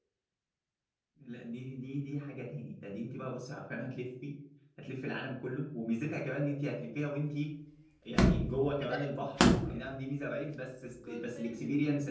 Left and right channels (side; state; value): both; identical; correlation 1.00